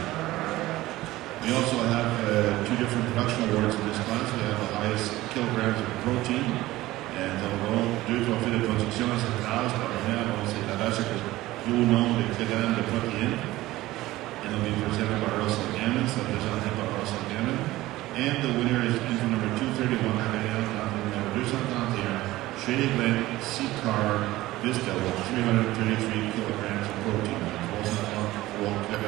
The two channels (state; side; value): quieter; left; 17.2 dB